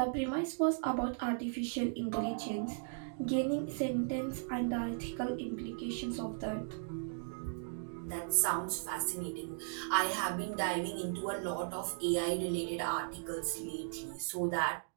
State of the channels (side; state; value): left; silent; digital silence